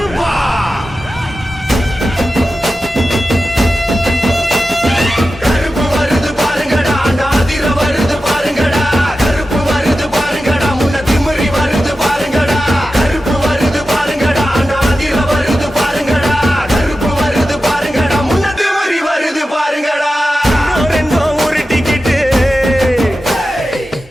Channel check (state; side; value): normal; both; correlation 0.93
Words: கருப்பு வருது பாருங்கடா நாதிர வருது பாருங்கடா கருப்பு வருது பாருங்கடா முன்ன திமிரி வருது பாருங்கடா கருப்பு வருது பாருங்கடா நாதிர வருது பாருங்கடா கருப்பு வருது பாருங்கடா முன்ன திமிரி வருது பாருங்கடா ரெண்டோ ஒரு டிக்கெட்